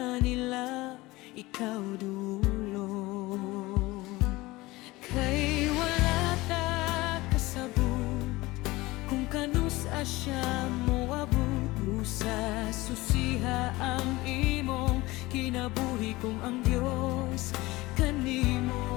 nila, ikaw dulong. Kay wala ta kasabot, kung kanus asya mo abot, sa susiha ang imong kinabuhi, kung ang Diyos kanimo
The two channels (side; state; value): right; quieter; 20.3 dB